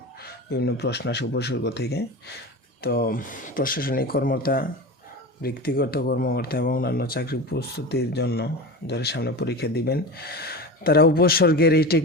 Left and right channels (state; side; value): normal; both; correlation 0.28